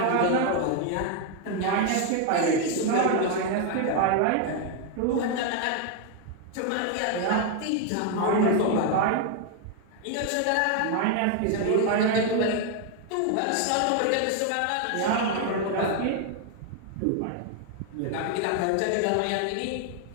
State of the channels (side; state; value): both; different; correlation 0.01